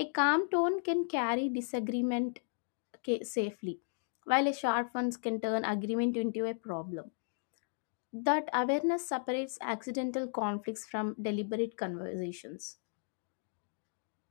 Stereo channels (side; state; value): right; silent; digital silence